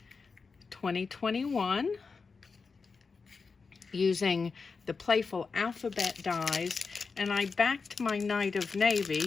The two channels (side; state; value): right; quieter; 4.8 dB